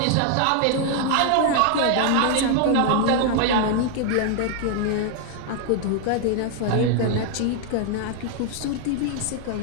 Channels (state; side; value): different; both; correlation 0.00